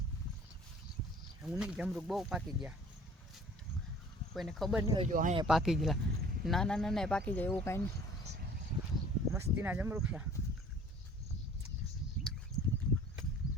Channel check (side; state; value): both; normal; correlation 0.50